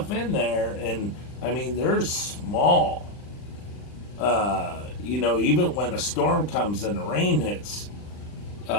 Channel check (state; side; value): late; right; 39 ms